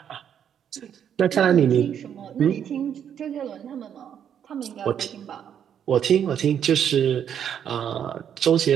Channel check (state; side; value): quieter; left; 8.9 dB